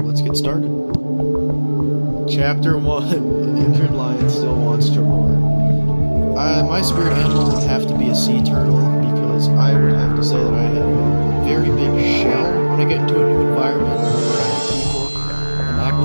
let's get started. Chapter 1, An Injured Lion Still Wants to Roar. My spirit animal would have to be a sea turtle, because I would have to say that I have a very big shell when I get into a new environment around people, and act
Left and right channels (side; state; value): both; inverted; correlation -1.00